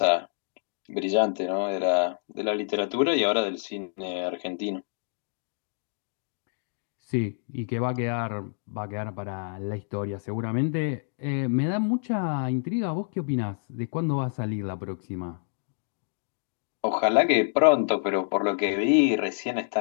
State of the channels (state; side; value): silent; right; digital silence